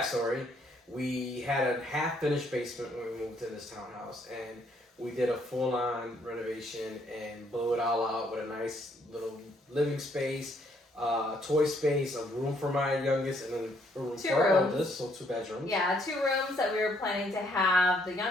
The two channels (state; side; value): normal; both; correlation 0.69